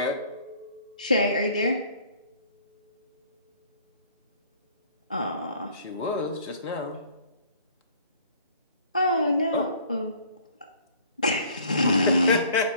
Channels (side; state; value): both; inverted; correlation -0.55